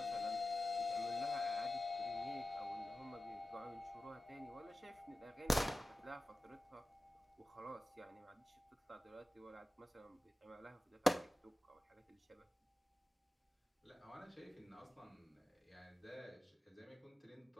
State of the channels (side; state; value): both; normal; correlation 0.95